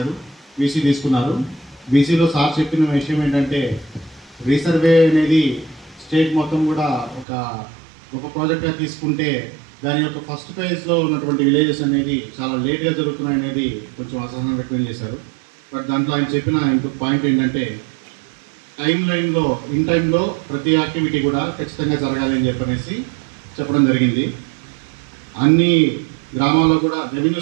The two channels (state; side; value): drops out; left; at 7.2 s